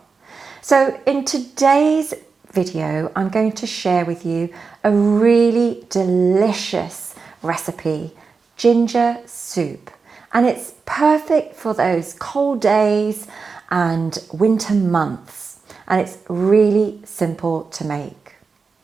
So in today's video, I'm going to share with you a really delicious recipe, ginger soup. And it's perfect for those cold days and winter months. And it's really simple to make.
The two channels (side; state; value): left; quieter; 4.8 dB